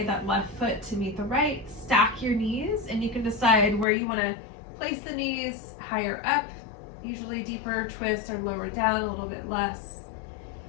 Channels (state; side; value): drops out; right; at 3.9 s